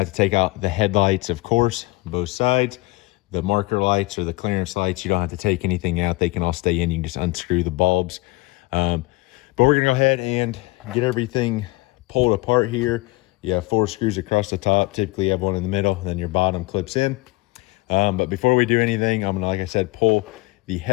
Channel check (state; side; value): quieter; right; 22.3 dB